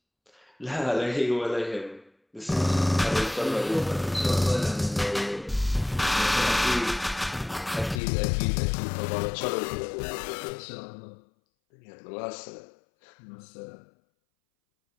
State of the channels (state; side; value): drops out; right; at 8.0 s